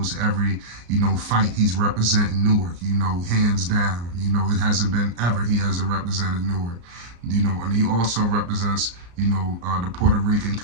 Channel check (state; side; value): late; left; 34 ms